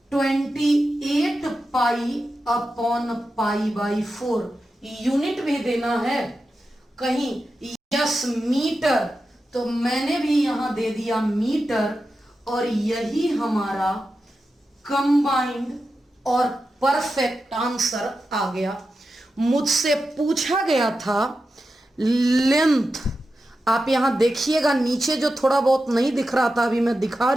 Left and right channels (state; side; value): normal; both; correlation 0.91